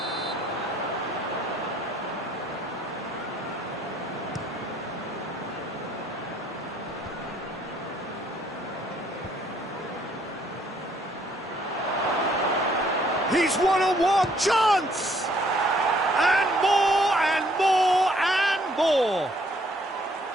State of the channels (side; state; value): both; normal; correlation 0.64